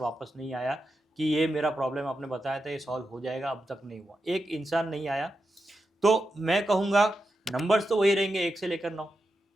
नहीं आया कि ये मेरा प्रॉब्लम आपने बताया था ये सॉल्व हो जाएगा, अब तक नहीं हुआ, एक इंसान नहीं आया। तो मैं कहूँगा नंबर्स तो वही रहेंगे 1 से लेकर 9।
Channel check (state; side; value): normal; both; correlation 0.88